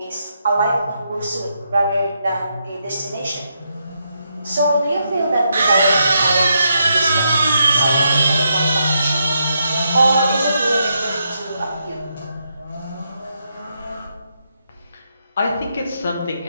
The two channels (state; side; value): inverted; both; correlation -0.80